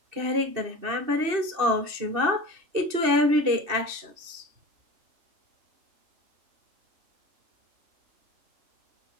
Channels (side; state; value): left; late; 2.7 ms